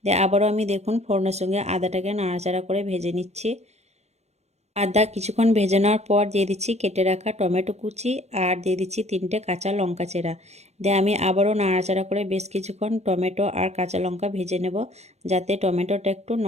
দিয়ে আবারও আমি দেখুন ফোড়নের সঙ্গে আদাটাকে নাড়াচাড়া করে ভেজে নিচ্ছি। আদা কিছুক্ষণ ভেজে নেওয়ার পর দিয়ে দিচ্ছি কেটে রাখা টমেটো কুচি আর দিয়ে দিচ্ছি 3টে কাঁচা লঙ্কা চেরা। দিয়ে আমি আবারও নাড়াচাড়া করে বেশ কিছুক্ষণ টমেটো আর কাঁচা লঙ্কা ভেজে নেব, যাতে টমেটোটা একটু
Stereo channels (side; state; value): left; late; 0.32 ms